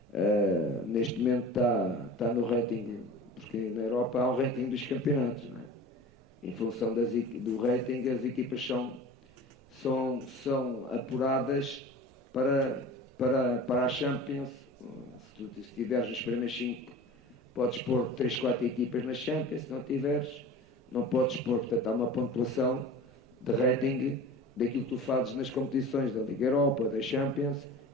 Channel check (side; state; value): both; normal; correlation 0.37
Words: Neste momento está no ranking, porque na Europa há um ranking dos campeonatos, não é? Em função do rating, as equipas são apuradas para a Champions. Se estiveres nos primeiros 5, podes pôr 3, 4 equipas na Champions. Se não tiveres, não podes pôr. Portanto, há uma pontuação de rating daquilo que tu fazes nas competições da Liga Europa, da Champions.